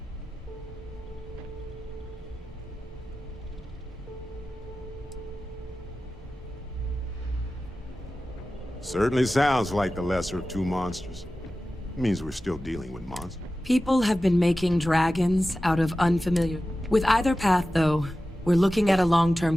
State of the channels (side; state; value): both; normal; correlation 0.94